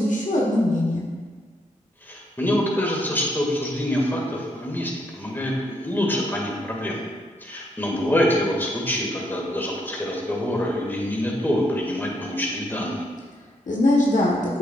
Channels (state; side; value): normal; both; correlation 0.75